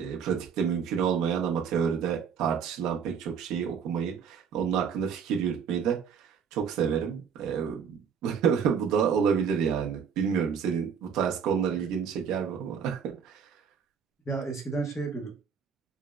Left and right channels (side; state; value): left; quieter; 7.0 dB